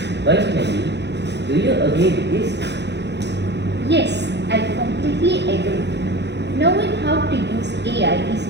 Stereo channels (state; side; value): late; left; 0.50 ms